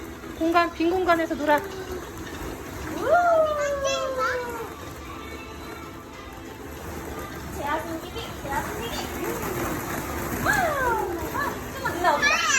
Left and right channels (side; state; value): both; identical; correlation 1.00